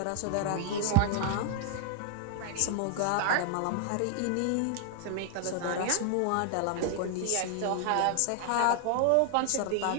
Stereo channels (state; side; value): different; both; correlation 0.00